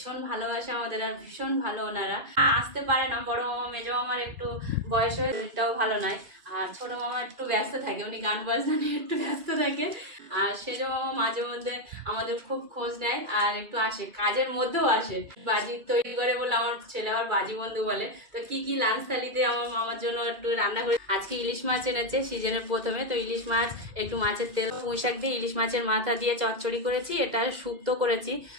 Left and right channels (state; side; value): late; left; 2.5 ms